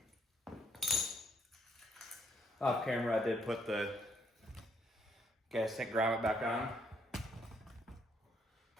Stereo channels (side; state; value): both; normal; correlation 0.71